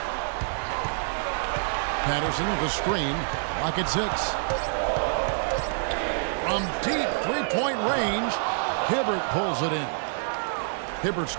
Patterson, the screen. Lock at 6. From deep three-point range, Hibbert pulls it in. Hibbert's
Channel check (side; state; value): left; silent; 60 dB below the other